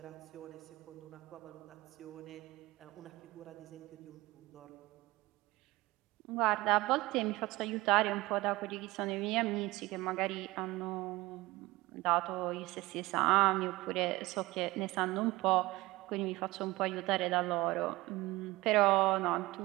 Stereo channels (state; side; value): quieter; left; 19.9 dB